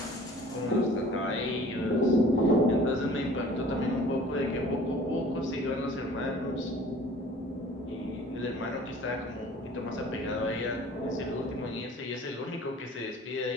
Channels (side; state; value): both; normal; correlation 0.48